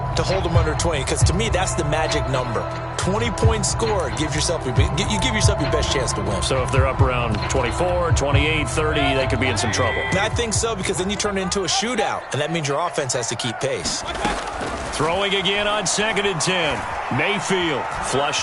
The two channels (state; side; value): identical; both; correlation 1.00